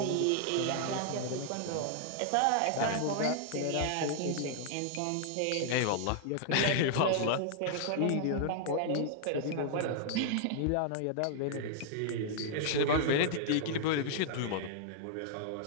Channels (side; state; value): both; different; correlation -0.01